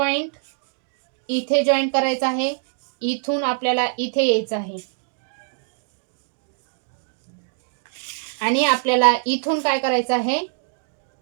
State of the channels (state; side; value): silent; left; 63 dB below the other